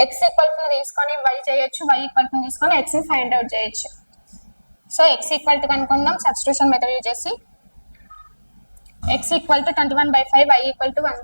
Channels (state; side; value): inverted; both; correlation -1.00